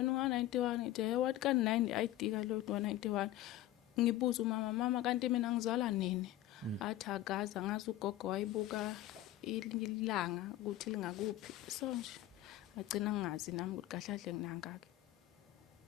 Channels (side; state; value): right; quieter; 14.6 dB